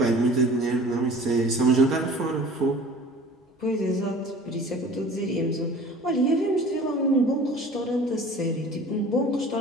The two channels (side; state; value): both; normal; correlation 0.45